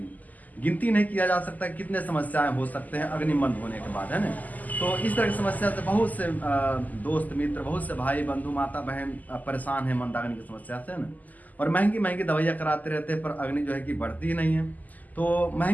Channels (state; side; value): late; right; 0.080 ms